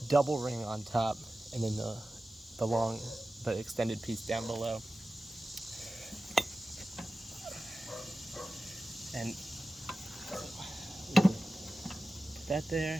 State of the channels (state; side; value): normal; both; correlation 0.95